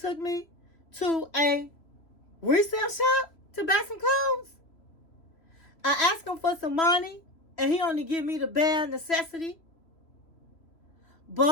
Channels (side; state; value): right; late; 3.0 ms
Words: me to a resale shop to buy some clothes? I asked him for some money, and he only give me the bare necessity.